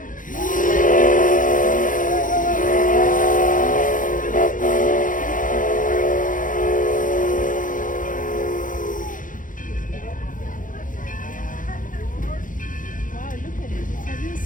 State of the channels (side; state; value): right; late; 0.39 ms